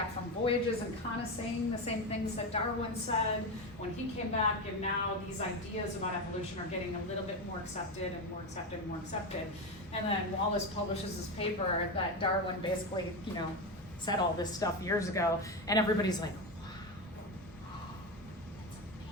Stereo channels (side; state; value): both; normal; correlation 0.16